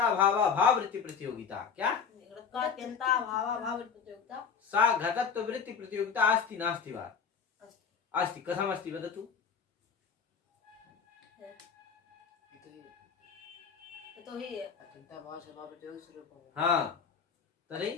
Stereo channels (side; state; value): right; quieter; 6.3 dB